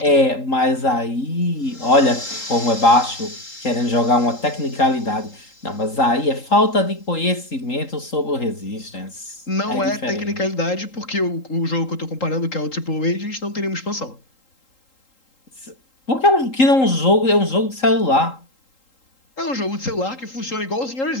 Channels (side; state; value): right; late; 3.8 ms